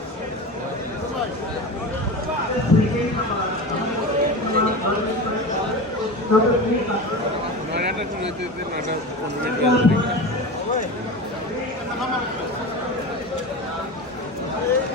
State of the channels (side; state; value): both; normal; correlation 0.28